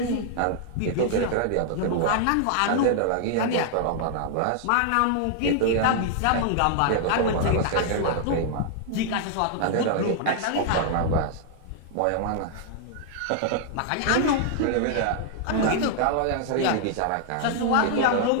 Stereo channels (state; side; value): different; both; correlation 0.00